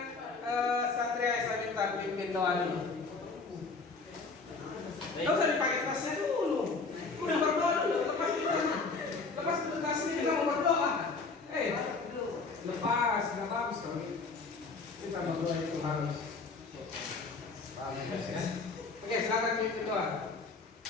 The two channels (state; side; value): quieter; right; 4.2 dB